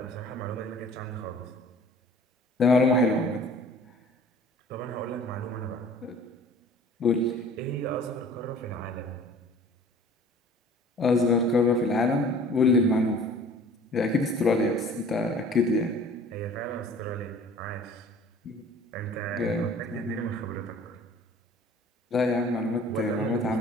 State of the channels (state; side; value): normal; both; correlation 0.48